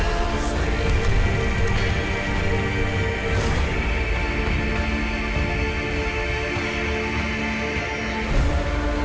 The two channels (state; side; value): identical; both; correlation 1.00